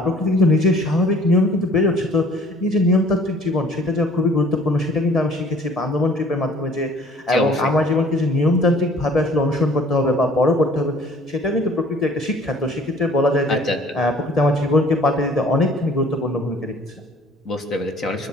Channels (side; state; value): both; normal; correlation 0.53